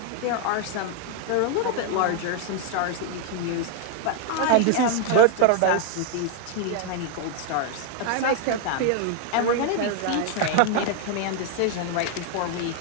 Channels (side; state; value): both; different; correlation 0.01